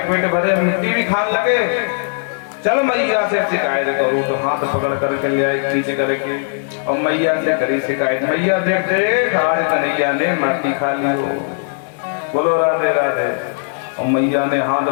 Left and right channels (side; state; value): right; silent; 67 dB below the other